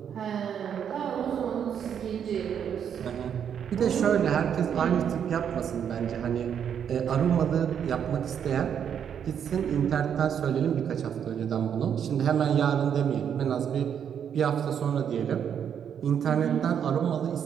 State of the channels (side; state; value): left; quieter; 8.4 dB